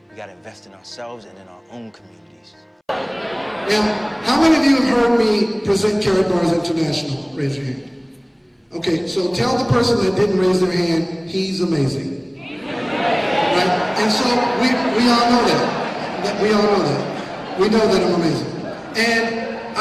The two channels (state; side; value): identical; both; correlation 1.00